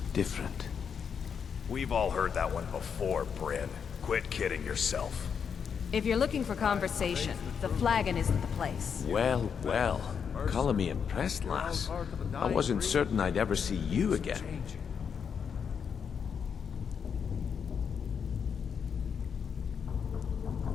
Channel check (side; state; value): right; quieter; 6.9 dB